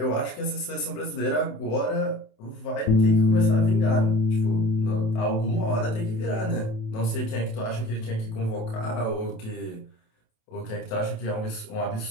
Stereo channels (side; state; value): right; late; 27 ms